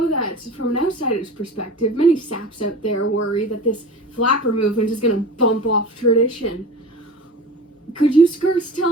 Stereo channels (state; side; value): normal; both; correlation 0.35